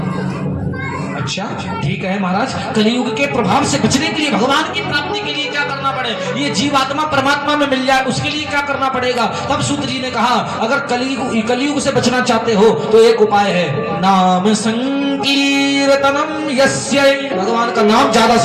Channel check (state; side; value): identical; both; correlation 1.00